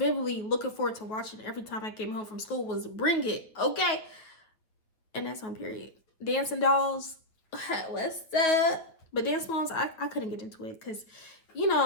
looking forward to watching every time I came home from school was Bring It, okay? And that's on period. Dancing Dolls, what's up? But Dance Moms, I couldn't get into it because,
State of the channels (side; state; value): right; late; 9.1 ms